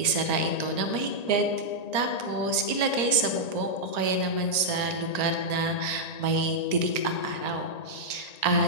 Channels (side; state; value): right; late; 1.9 ms